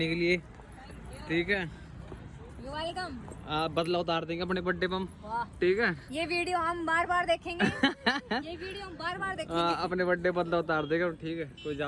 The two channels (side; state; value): both; identical; correlation 1.00